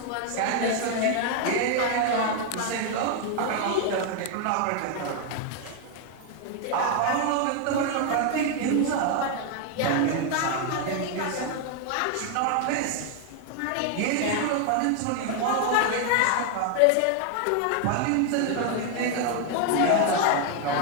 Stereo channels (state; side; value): different; both; correlation 0.01